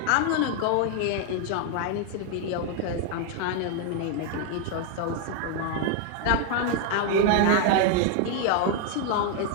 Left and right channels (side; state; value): both; different; correlation 0.00